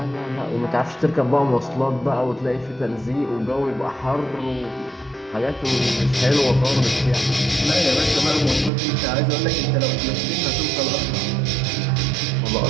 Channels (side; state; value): left; drops out; at 8.7 s